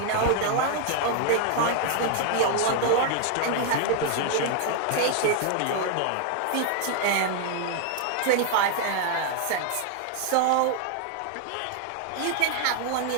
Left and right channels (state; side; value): different; both; correlation 0.00